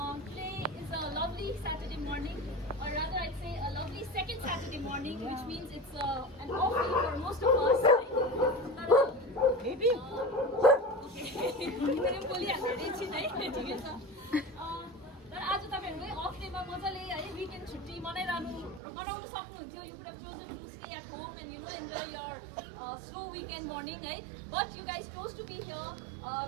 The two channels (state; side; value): drops out; left; at 18.8 s